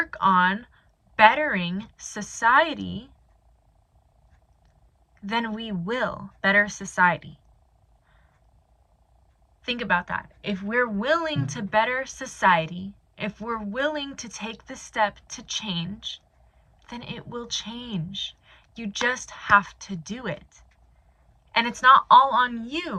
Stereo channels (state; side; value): identical; both; correlation 1.00